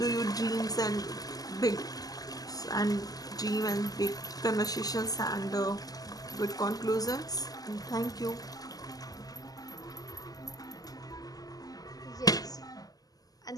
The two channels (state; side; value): late; right; 0.18 ms